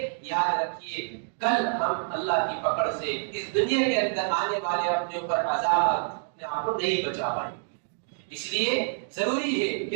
یاد رکھیے کل ہم اللہ کی پکڑ سے اس دنیا کے اندر آنے والے اپنے اوپر عذاب اپنے آپ کو نہیں بچا پائیں گے۔ اس لیے ضروری ہے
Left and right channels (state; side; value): silent; left; digital silence